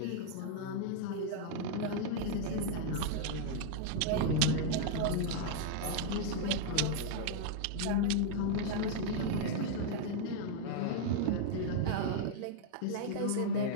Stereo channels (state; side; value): different; both; correlation -0.01